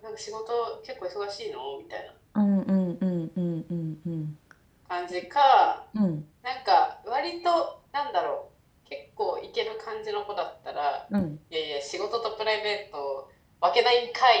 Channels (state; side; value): identical; both; correlation 1.00